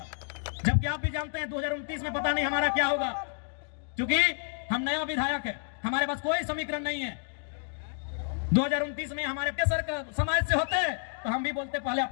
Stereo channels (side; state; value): right; silent; 58 dB below the other